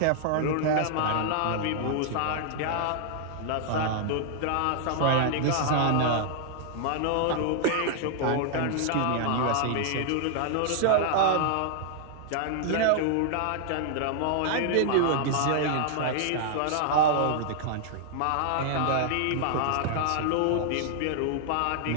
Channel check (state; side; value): different; both; correlation -0.01